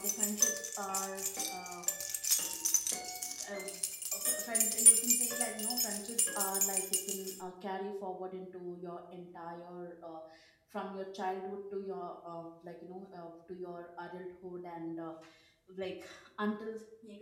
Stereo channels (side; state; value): both; identical; correlation 1.00